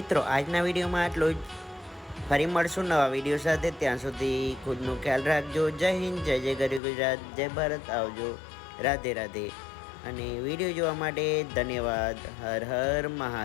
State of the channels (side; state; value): right; drops out; at 6.8 s